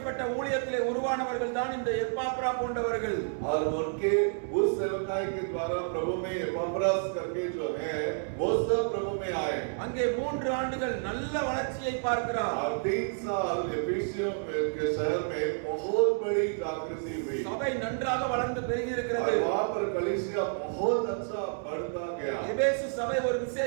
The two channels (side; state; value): left; silent; digital silence